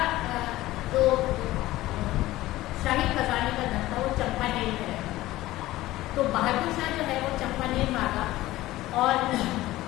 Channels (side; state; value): right; quieter; 16.7 dB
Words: जो शाही खजाने का धन था वो चंपानेर में रहता। तो बहादुर शाह जो है वो चंपानेर भागा और